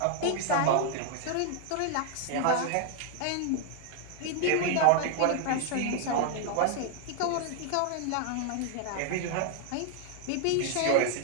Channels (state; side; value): different; both; correlation 0.00